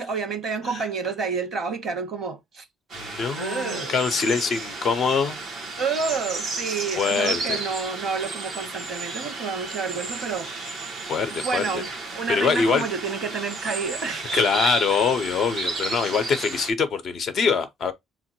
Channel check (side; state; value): both; normal; correlation 0.57